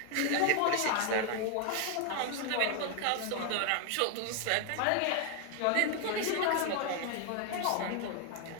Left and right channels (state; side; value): different; both; correlation 0.01